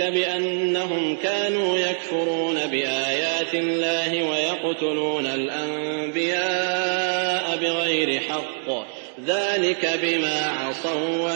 بأنهم كانوا يكفرون بآيات الله ويقتلون الأنبياء بغير حق ذلك بما عصوا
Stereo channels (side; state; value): left; silent; 63 dB below the other